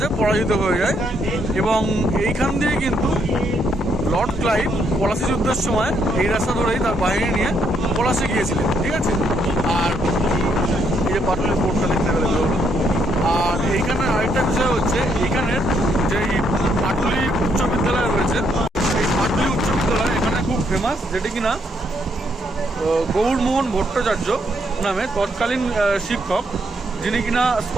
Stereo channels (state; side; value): normal; both; correlation 0.73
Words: পরাজিত হয়ে যায়, এবং এইখান দিয়ে কিন্তু লর্ড ক্লাইভ পলাশি যুদ্ধের সময় এই রাস্তা ধরেই তার বাহিনী নিয়ে পলাশে গিয়েছিলেন, ঠিক আছে? আর এই যে পাটুলি পোর্টটা দেখতে পেলে। আর এইখানে আরেকটা বিষয় হচ্ছে, এখানের যে পাটুলি উচ্চ বিদ্যালয় রয়েছে, এই পাটুলি উচ্চ বিদ্যালয় এখানে খুব ফেমাস, যেটি কিনা গৌরমোহন ভট্টাচার্য নামে তৎকালীন শিক্ষক, যিনি কিনা